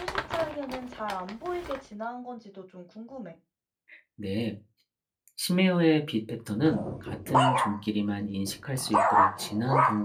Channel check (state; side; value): identical; both; correlation 1.00